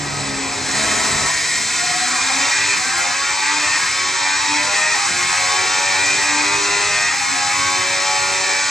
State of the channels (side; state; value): both; normal; correlation 0.81